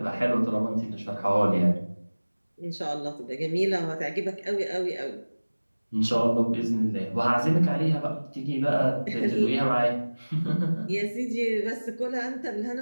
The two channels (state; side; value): inverted; both; correlation -1.00